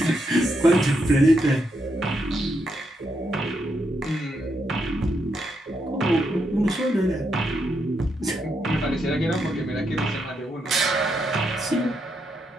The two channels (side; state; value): both; normal; correlation 0.80